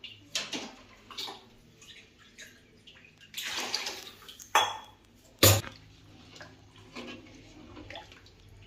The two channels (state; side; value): identical; both; correlation 1.00